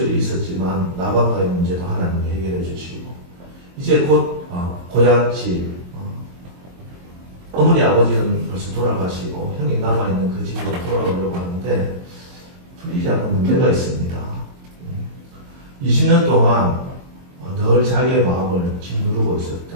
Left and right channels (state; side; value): late; left; 22 ms